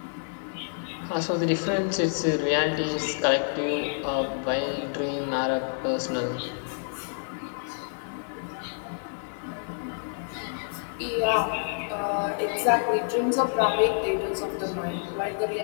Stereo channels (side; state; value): right; silent; 59 dB below the other